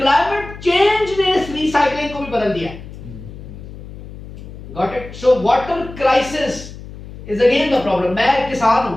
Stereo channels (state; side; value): noise; left; hum, 14 dB below the sound